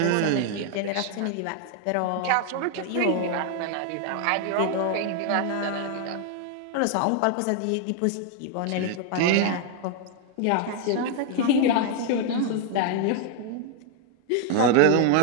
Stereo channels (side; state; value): both; different; correlation 0.00